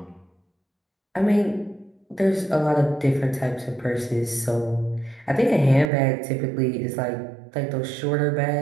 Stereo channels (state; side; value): drops out; left; at 5.9 s